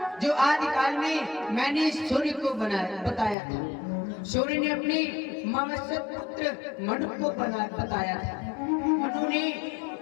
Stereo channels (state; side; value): drops out; right; at 3.4 s